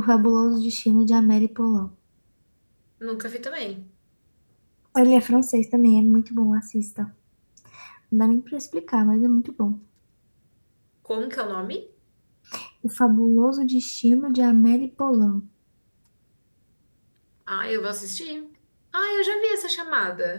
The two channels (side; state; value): both; inverted; correlation -1.00